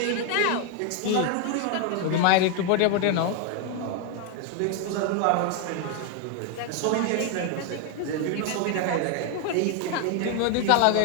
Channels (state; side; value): different; both; correlation 0.01